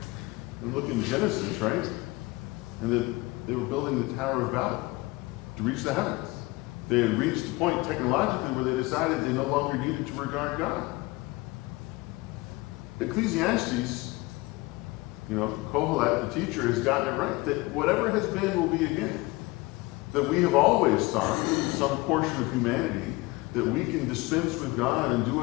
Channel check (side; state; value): right; quieter; 22.3 dB